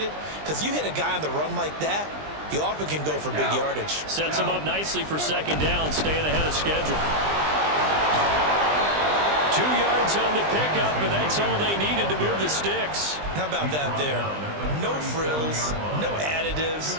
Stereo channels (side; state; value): left; late; 20 ms